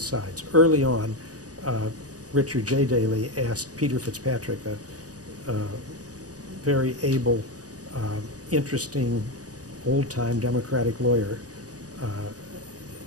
sides. Early on, Richard J. Daley asked Peter Fitzpatrick, a very able, interesting, old-time Democratic lawyer,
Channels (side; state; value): left; late; 0.67 ms